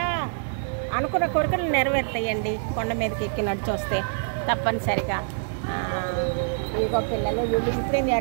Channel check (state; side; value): silent; left; digital silence